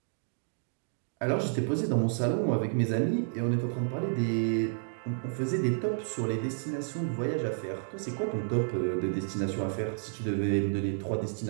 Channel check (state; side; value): silent; left; digital silence